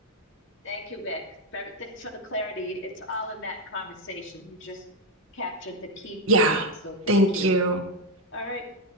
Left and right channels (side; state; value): both; normal; correlation 0.07